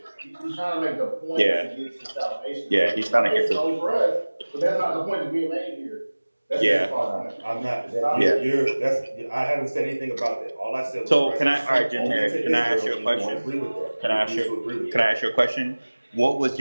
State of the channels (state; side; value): inverted; both; correlation -1.00